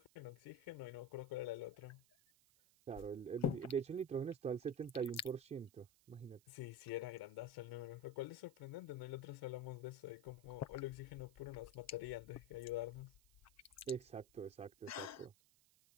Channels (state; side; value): noise; right; hiss, 28 dB below the sound